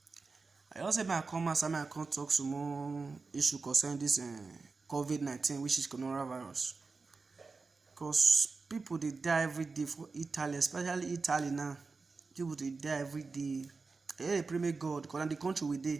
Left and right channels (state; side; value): quieter; left; 4.2 dB